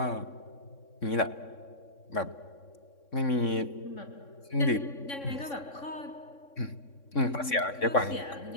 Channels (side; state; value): right; late; 3.6 ms